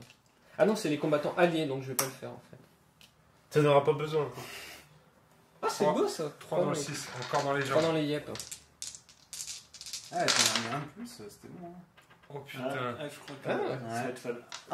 Ah non, c'est les combattants alliés, donc je vais pas le faire en fait. T'en auras pas besoin. Ah, c'est Trois. beau ça 3 dans le 6, encore dans les 3 jambes. dans les yep. Ah, t'en as mis un de plus, c'était bon. Hein. Oh Ah, putain. je crois que Ah, ouais. ça va être fun.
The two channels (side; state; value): both; identical; correlation 1.00